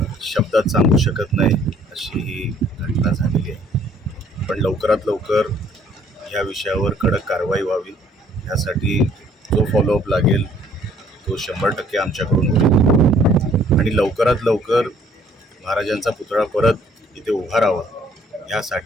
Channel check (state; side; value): normal; both; correlation 0.60